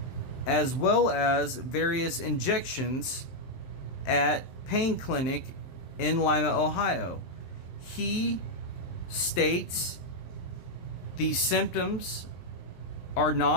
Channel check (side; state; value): right; late; 23 ms